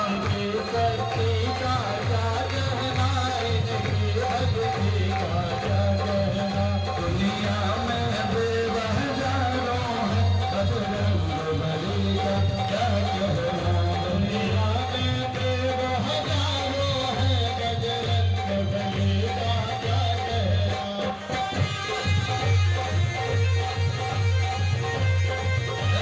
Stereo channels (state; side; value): identical; both; correlation 1.00